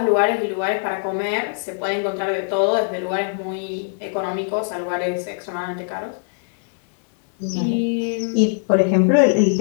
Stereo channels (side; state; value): right; silent; 58 dB below the other